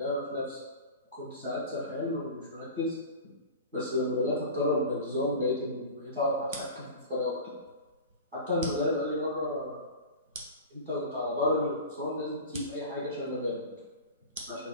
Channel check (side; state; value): both; inverted; correlation -0.33